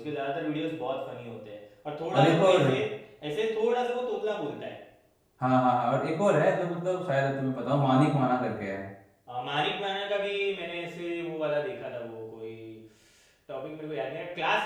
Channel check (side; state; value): both; identical; correlation 1.00